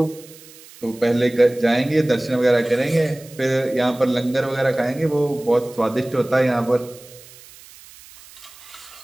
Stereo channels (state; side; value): noise; right; hiss, 21 dB below the sound